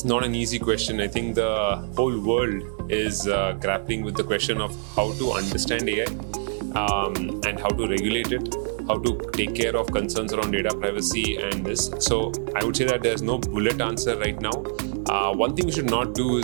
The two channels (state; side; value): silent; left; 62 dB below the other